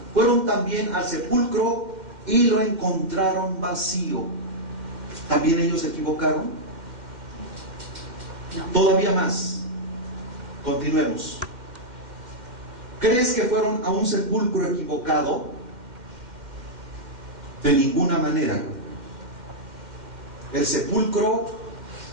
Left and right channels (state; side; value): late; left; 2.1 ms